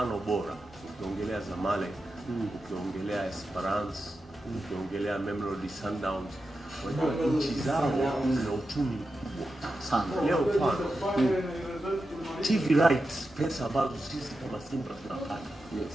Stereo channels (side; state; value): both; normal; correlation 0.90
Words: bora. Ukiongelea Zamalek, ukiongelea Esperance, ukiongelea Mamelodi Sundowns, unajua nchi zao zina uchumi mkubwa sana. Leo mfano TV rights, pesa ambazo sisi kama Simba tunapata,